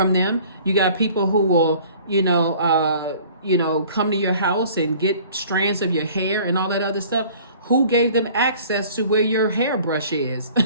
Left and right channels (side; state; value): both; inverted; correlation -0.51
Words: them. You got people who will come to your house and get strands of your hair and all that other stuff. Who gave them access to where your hairbrush is?